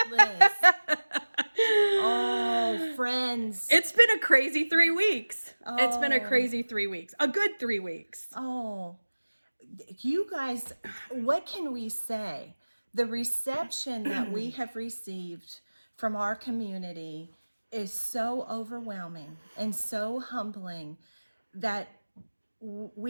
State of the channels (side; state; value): both; inverted; correlation -1.00